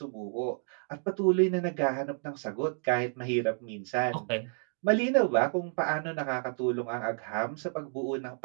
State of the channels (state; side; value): silent; left; 56 dB below the other